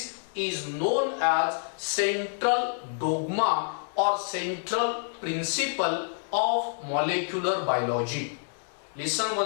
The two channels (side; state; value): right; silent; digital silence